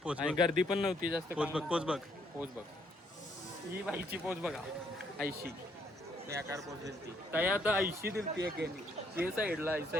पोच आणि बघ. गर्दी पण नव्हती जास्त. पोच बघ पोच बघ पोच बघ, ही बाईची पोच बघा, ऐशी बेकार पोच दिलती काय. आता ऐशी दिलती एकेनी ते साईडला ऐसा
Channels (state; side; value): normal; both; correlation 0.70